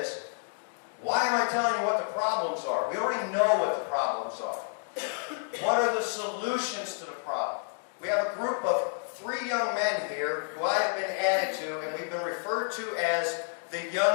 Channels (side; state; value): right; silent; digital silence